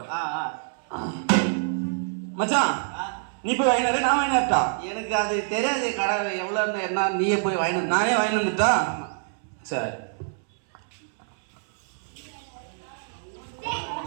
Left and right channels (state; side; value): silent; left; 61 dB below the other